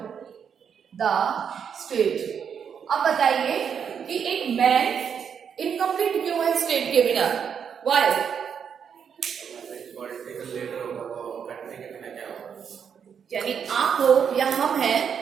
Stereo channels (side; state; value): left; quieter; 7.4 dB